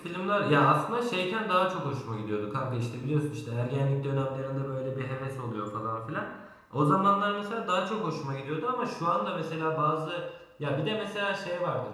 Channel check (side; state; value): both; identical; correlation 1.00